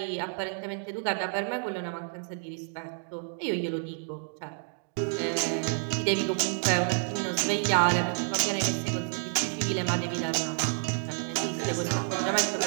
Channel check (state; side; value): silent; left; 58 dB below the other